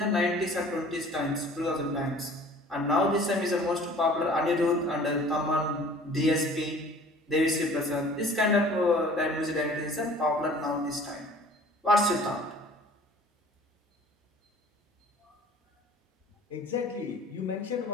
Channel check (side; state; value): both; normal; correlation 0.49